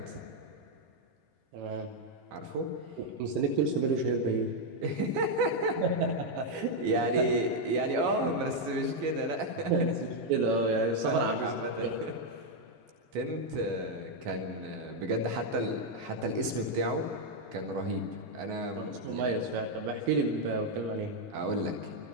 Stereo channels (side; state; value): left; late; 13 ms